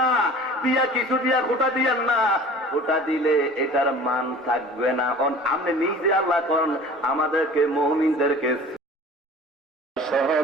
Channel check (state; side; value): normal; both; correlation 0.43